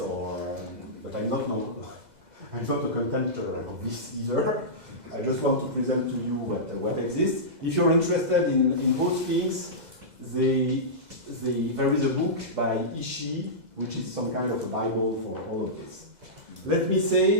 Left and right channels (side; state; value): left; late; 2.0 ms